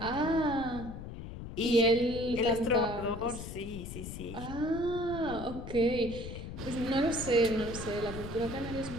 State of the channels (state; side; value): noise; left; rumble, 9 dB below the sound